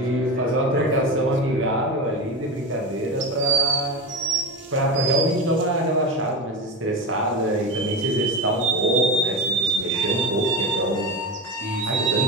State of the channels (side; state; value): both; normal; correlation 0.21